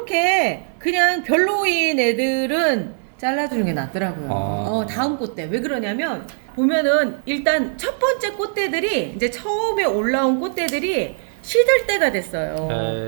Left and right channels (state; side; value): silent; left; 55 dB below the other